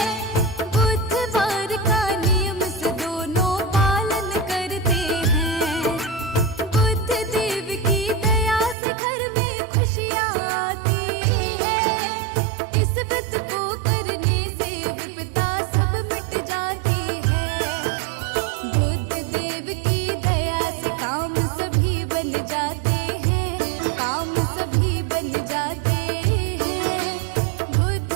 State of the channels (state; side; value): drops out; left; at 8.8 s